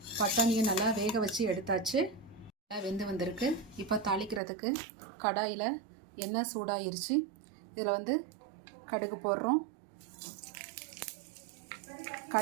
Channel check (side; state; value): left; drops out; at 4.4 s